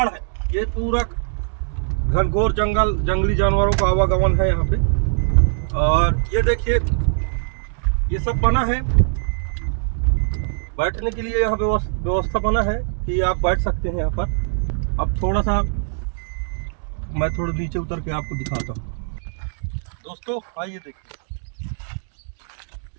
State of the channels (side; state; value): left; silent; digital silence